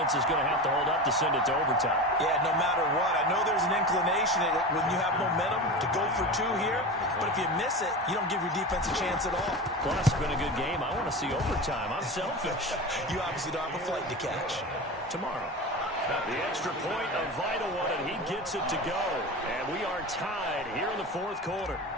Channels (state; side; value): normal; both; correlation 0.27